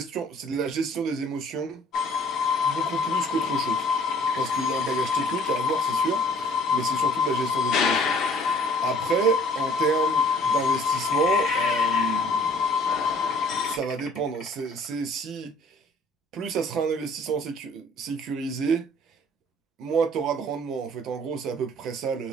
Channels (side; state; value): both; normal; correlation 0.54